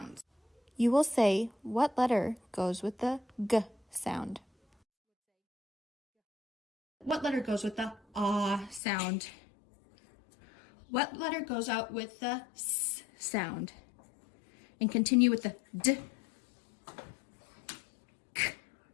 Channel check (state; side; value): drops out; right; at 8.8 s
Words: You will say what letter goes with the G sound. What letter goes with the ah sound? What letter goes out with the S sound? And continue with the D, K,